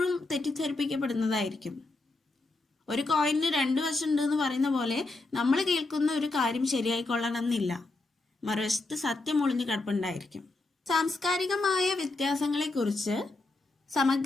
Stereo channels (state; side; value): quieter; right; 3.1 dB